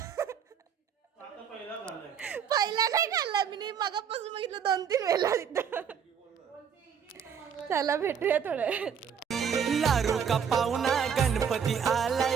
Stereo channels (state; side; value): quieter; left; 7.4 dB